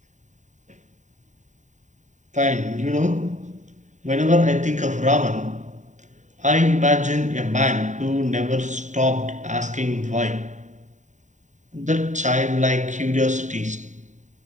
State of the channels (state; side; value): late; left; 0.35 ms